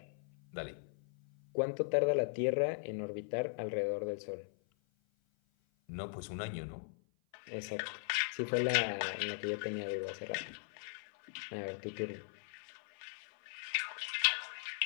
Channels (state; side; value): silent; right; 52 dB below the other